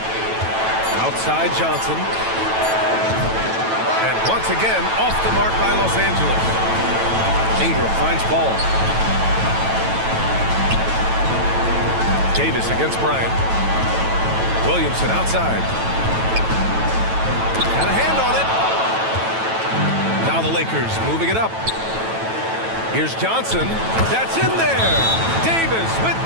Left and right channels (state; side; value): late; left; 9.1 ms